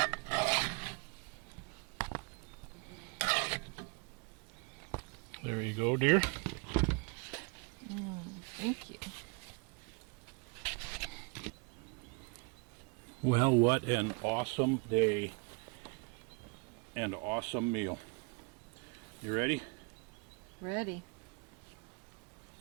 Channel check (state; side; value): quieter; left; 32.6 dB